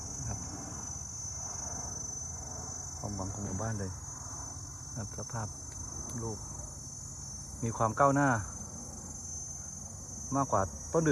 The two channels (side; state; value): both; identical; correlation 1.00